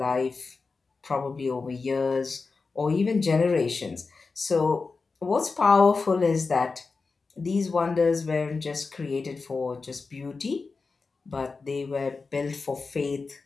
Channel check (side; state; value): right; quieter; 4.3 dB